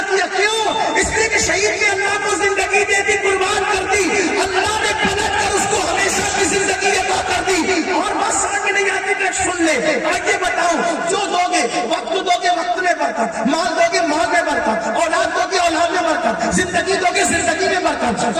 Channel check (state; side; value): identical; both; correlation 1.00